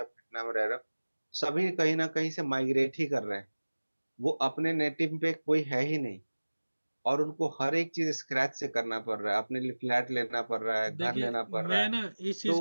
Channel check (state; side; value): inverted; both; correlation -1.00